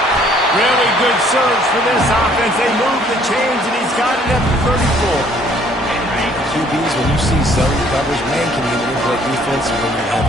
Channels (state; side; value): normal; both; correlation 0.61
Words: Really good surge for this offense. They move the chains, and he's got it at the 34. QBs, when you see zone coverage, man, can you manipulate defense when you have